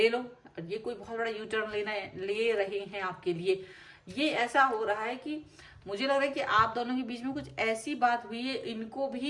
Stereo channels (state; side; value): identical; both; correlation 1.00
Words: लो। ये कोई बहुत बड़ा यू टर्न ले रहे हैं आपके लिए। ये ऐसा हो रहा है कि मुझे लग रहा है कि आप दोनों के बीच में कुछ ऐसी बात हुई है, इनको